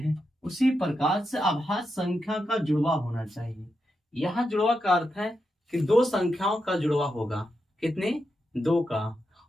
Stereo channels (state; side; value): normal; both; correlation 0.86